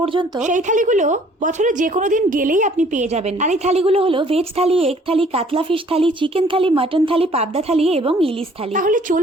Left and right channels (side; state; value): both; normal; correlation 0.58